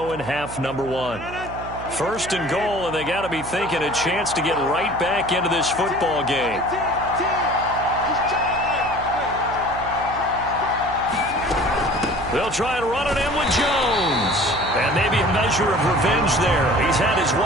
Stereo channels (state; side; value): noise; right; hum, 12 dB below the sound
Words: in half number 1. 1st and goal, and they got to be thinking a chance to get right back into this football game. They'll try and run it in with Jones. And maybe a measure of revenge there. He's had his